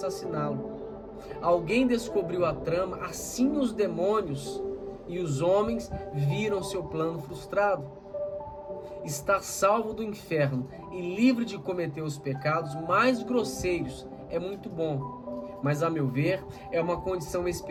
Alguém descobriu a trama, assim os demônios e os homens viram seu plano frustrado. Estar salvo do inferno e livre de cometer os pecados mais grosseiros é muito bom, mas a meu ver é uma condição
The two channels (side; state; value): both; identical; correlation 1.00